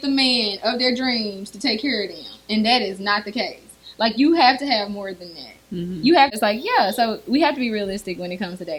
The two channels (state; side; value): identical; both; correlation 1.00